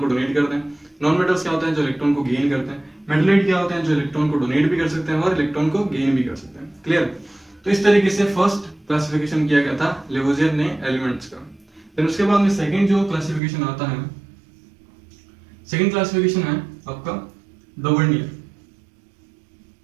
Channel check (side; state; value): left; drops out; at 13.4 s